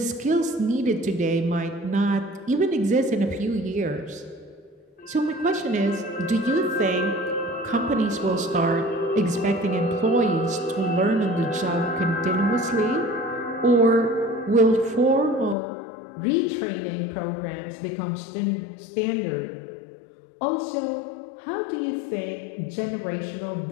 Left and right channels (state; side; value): drops out; right; at 15.6 s